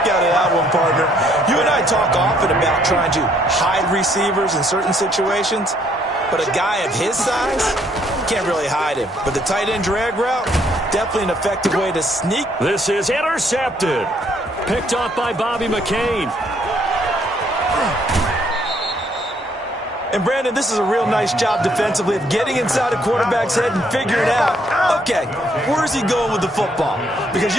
out of that one, partner. You and I talk often about trying to hide receivers in certain situations, but a guy of his size can't really hide him. But the tight end drag route, definitely an effective way to sneak. This is intercepted. Picked off by Bobby McCain. And, Brandon, this is a real nice job defensively of getting inside a quarterback's head and figuring out, okay, where's he going with the football? Because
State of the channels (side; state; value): both; normal; correlation 0.67